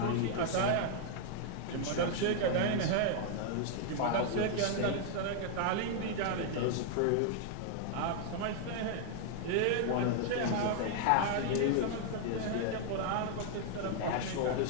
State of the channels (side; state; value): both; different; correlation 0.00